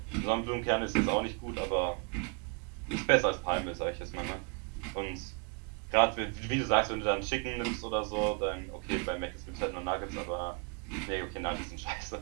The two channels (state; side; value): quieter; left; 33.7 dB